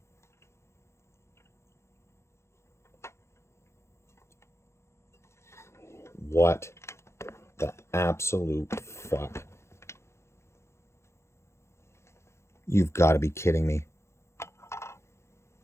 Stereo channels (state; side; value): late; right; 0.13 ms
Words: What the absolute fuck. You've got to be kidding me.